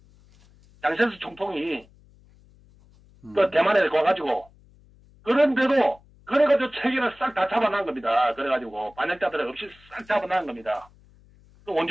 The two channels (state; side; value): noise; left; hum, 28 dB below the sound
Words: 장제스 총통이 대만에 가가지고 그런데도 그래가지고 체계를 싹 다 잡아놓은 겁니다. 그래가지고 반역자들 없이 싹 잡아놓은 겁니다. 또